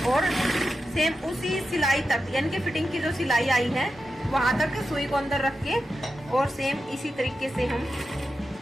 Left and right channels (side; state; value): both; normal; correlation 0.90